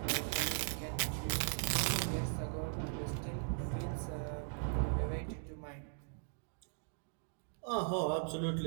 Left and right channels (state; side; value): silent; left; digital silence